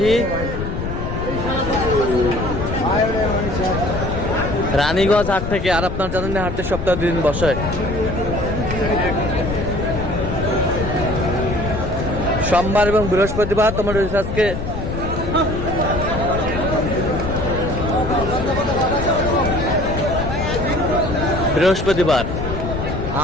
রানীগঞ্জ হাট থেকে। আর আপনার জানেন না, হাটে সপ্তাহে 2 দিন বসে, সোমবার এবং বৃহস্পতিবার। তোমার আজকে বৃহস্পতিবার,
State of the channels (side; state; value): left; noise; rumble, 4 dB below the sound